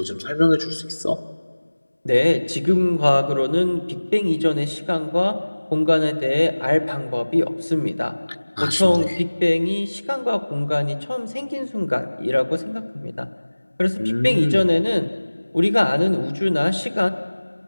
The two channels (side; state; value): both; inverted; correlation -1.00